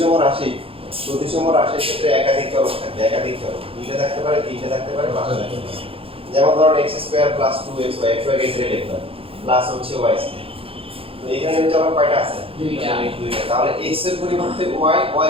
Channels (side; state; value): left; late; 0.27 ms